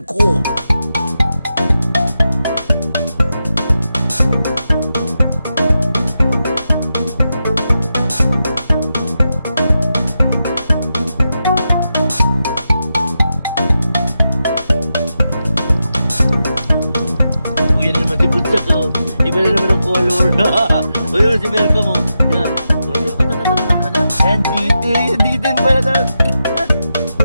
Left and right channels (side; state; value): both; inverted; correlation -0.88